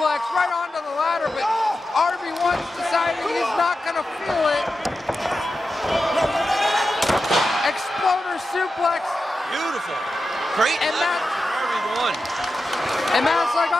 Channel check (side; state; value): both; normal; correlation 0.91